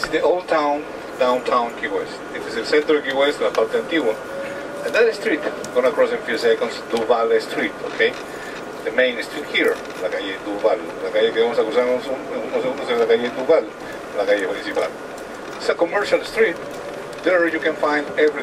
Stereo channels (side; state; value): both; identical; correlation 1.00